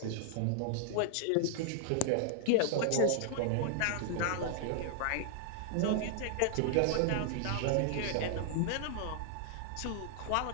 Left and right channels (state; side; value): different; both; correlation 0.00